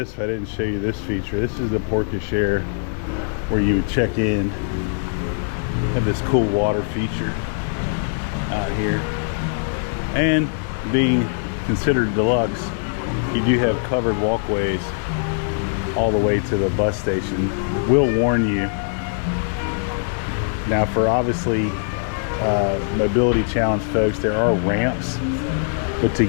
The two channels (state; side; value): silent; right; digital silence